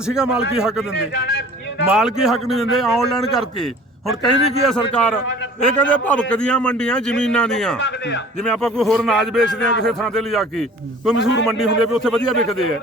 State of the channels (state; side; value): normal; both; correlation 0.47